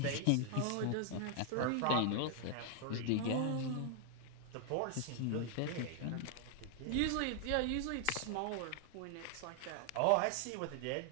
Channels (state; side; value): different; both; correlation 0.00